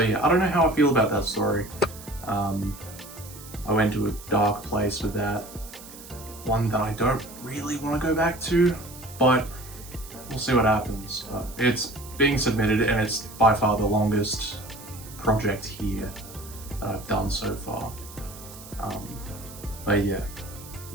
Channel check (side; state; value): right; noise; hiss, 17 dB below the sound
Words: yeah, I don't know how I feel about that story. I went to a dark place with that. One that I don't really want to go back to, but we'll see what happens. It's being submitted, and it's by far the longest project here that I've done so far. But yeah,